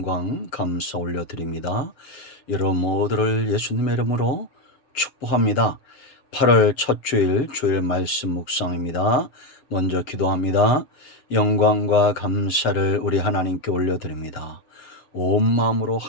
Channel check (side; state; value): right; late; 7.1 ms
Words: 감사 올려드립니다. 여러분 모두를 예수님의 이름으로 축복합니다. 8월 첫 주일 말씀 묵상입니다. 먼저 기도합니다. 영광과 감사를 우리 하나님께 올려드립니다. 온 마음으로